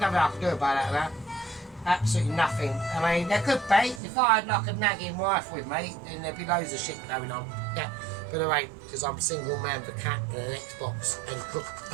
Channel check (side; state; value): left; drops out; at 4.0 s